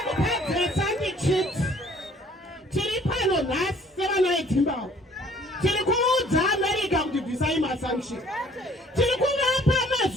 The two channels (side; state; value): both; normal; correlation 0.56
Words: kupedzesa ndichiti tiri pano nhasi sevana veZimbabwe tiri kuudza America kuti bvisai masanction, tiri kuvapa